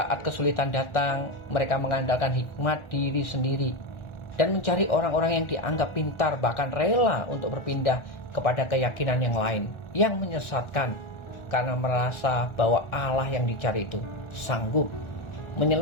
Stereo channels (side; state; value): right; late; 1.4 ms